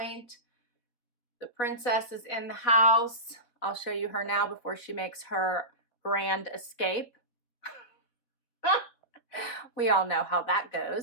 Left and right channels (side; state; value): right; late; 4.1 ms